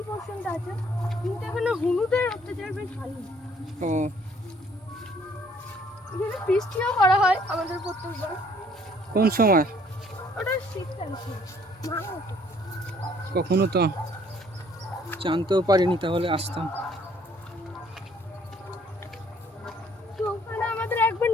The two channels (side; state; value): both; normal; correlation 0.61